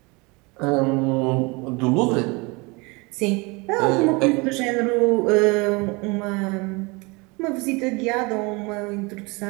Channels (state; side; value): quieter; left; 27.0 dB